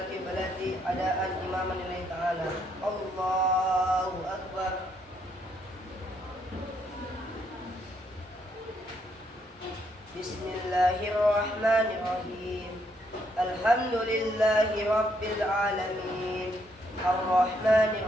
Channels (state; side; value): normal; both; correlation 0.73